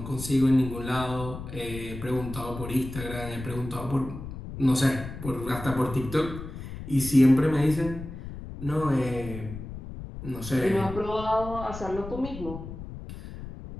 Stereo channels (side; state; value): left; noise; rumble, 10 dB below the sound